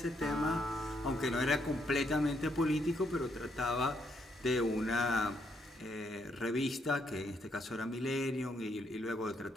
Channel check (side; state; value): both; normal; correlation 0.75